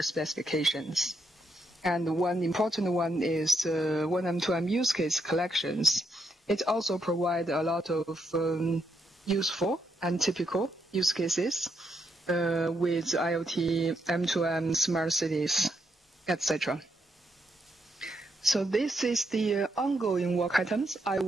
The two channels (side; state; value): both; normal; correlation 0.79